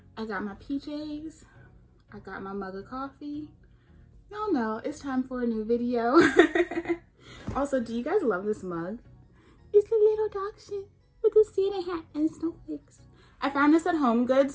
I got my PJs, I got my mug of coffee. Y'all know it's time for a new video. Also, do you guys love this mug? It's a little dog shit with a Santa hat and snowflakes. I found this at Home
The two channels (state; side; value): identical; both; correlation 1.00